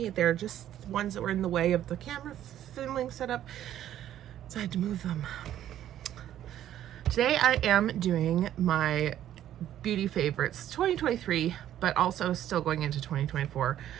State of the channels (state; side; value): quieter; left; 11.7 dB